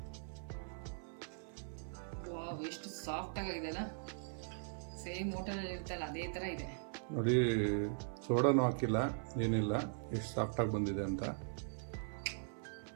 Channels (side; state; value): left; silent; 51 dB below the other